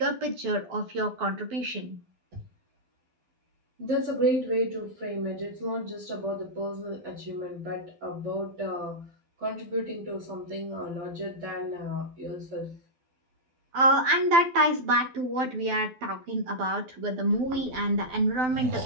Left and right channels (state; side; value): late; left; 12 ms